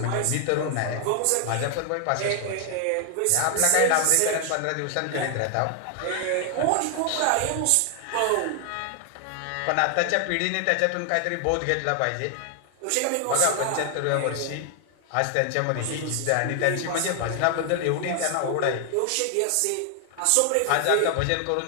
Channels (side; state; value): both; different; correlation 0.00